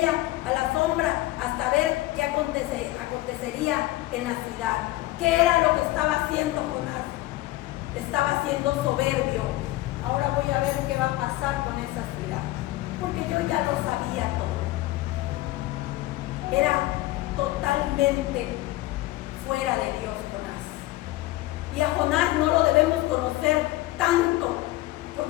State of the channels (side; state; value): right; quieter; 17.7 dB